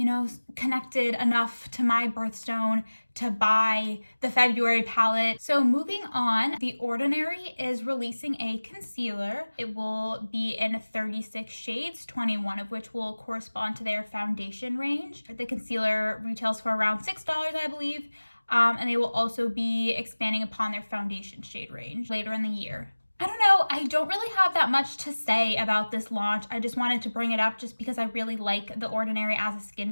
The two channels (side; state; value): both; inverted; correlation -1.00